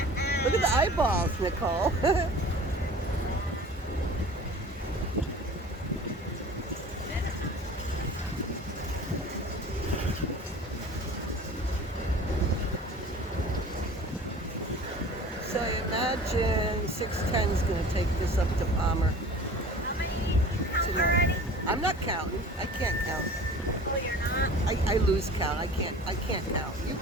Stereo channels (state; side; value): normal; both; correlation 0.42